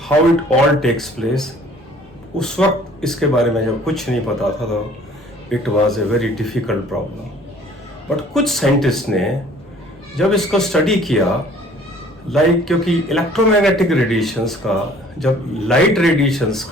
how it all takes place. उस वक्त इसके बारे में जब कुछ नहीं पता था तो it was a very difficult problem, but कुछ साइंटिस्ट ने जब इसको स्टडी किया, क्योंकि इलेक्ट्रोमैग्नेटिक रेडिएशंस का, जब लाइट रेडिएशंस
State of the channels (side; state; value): both; normal; correlation 0.53